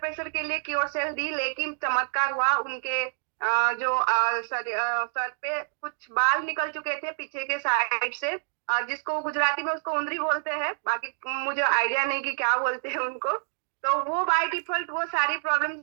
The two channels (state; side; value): silent; left; digital silence